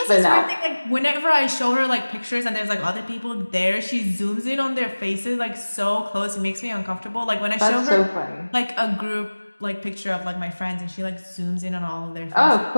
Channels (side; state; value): both; inverted; correlation -1.00